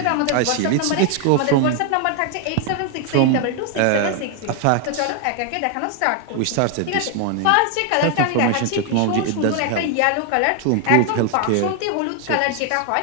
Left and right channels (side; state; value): both; different; correlation 0.00